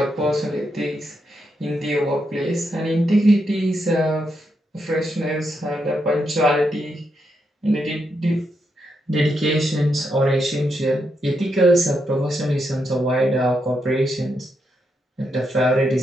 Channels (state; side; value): normal; both; correlation 0.82